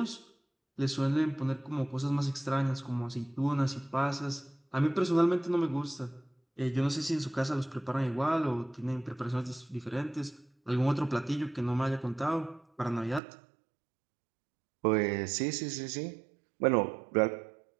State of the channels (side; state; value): left; drops out; at 13.2 s